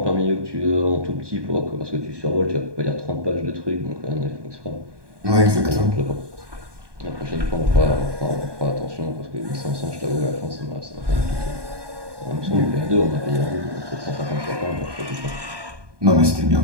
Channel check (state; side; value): late; left; 1.2 ms